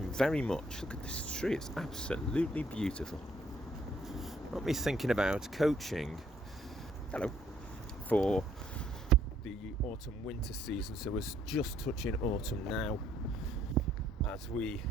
very much. Look at this tree, it's absolutely beautiful. Got me thinking about coaching, for the autumn-winter season. So we're just touching autumn now as we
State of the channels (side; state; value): both; normal; correlation 0.66